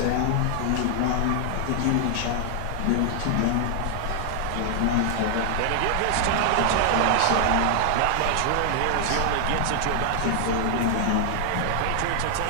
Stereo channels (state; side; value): different; both; correlation 0.00